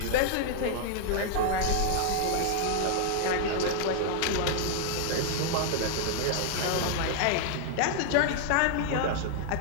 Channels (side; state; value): both; different; correlation 0.00